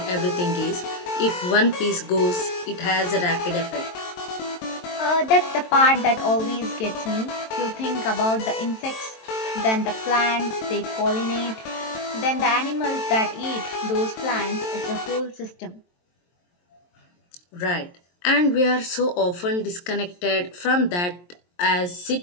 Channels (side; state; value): right; late; 23 ms